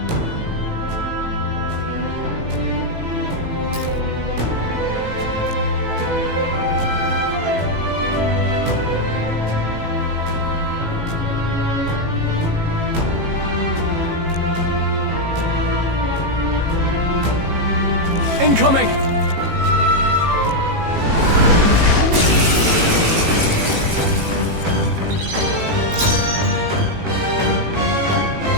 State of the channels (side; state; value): left; late; 18 ms